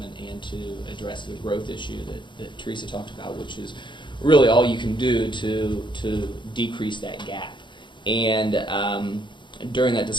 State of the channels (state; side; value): late; right; 0.23 ms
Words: and to address the growth issue that Teresa talked about, which is really all you can do to decrease that gap. And during that